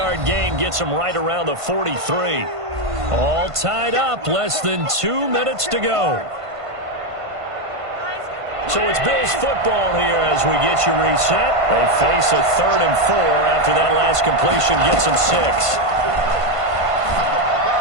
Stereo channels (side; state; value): left; late; 1.5 ms